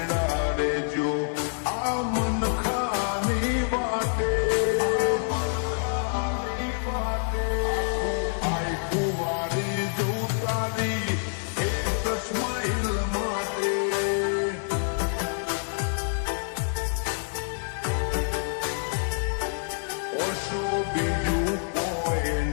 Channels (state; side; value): silent; right; 60 dB below the other